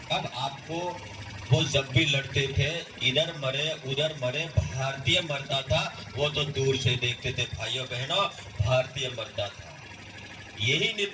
अब आपको वो जब भी लड़ते थे, इधर मरे उधर मरे, भारतीय मरता था वो तो दूर से देखते थे। भाइयों बहनों, भारतीय मरता था। यही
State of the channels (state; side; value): identical; both; correlation 1.00